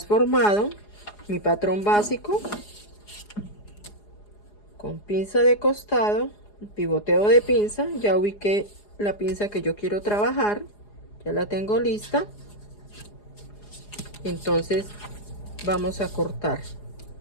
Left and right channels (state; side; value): late; right; 4.8 ms